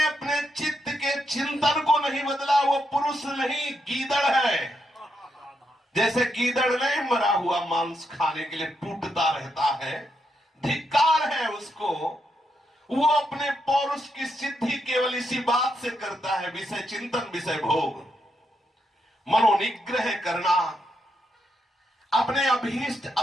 अपने चित्त के चिंतन को नहीं बदला, वो पुरुष नहीं गीदड़ है। जैसे गीदड़ नहीं मरा हुआ मांस खाने के लिए टूटता रहता है, धिक्कार है उसको। वो अपने पौरुष की सिद्धि केवल इसी बात से करता है, विषय चिंतन, विषय भोग। मनोनिग्रह करना, अपने अभीष्ट,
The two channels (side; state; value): both; normal; correlation 0.81